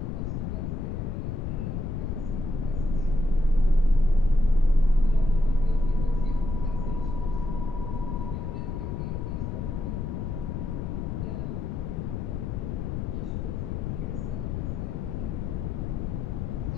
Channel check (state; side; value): noise; left; rumble, 3 dB below the sound